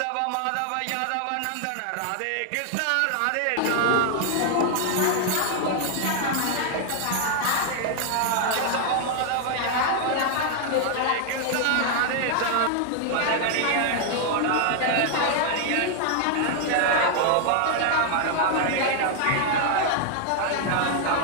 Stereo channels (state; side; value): different; both; correlation 0.00